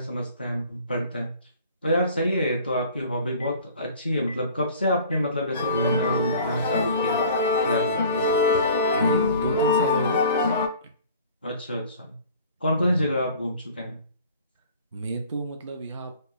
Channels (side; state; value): both; inverted; correlation -0.47